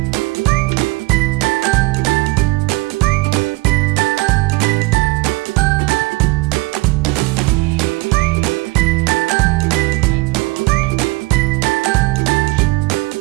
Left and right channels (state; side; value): quieter; left; 23.1 dB